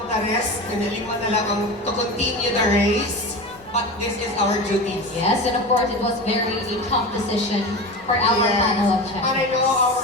the rest, kanilima na lang to continue the race. But this is our duty. Yes, and of course it was very a tough decision for our panel of judges. And I know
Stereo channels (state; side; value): noise; left; rumble, 27 dB below the sound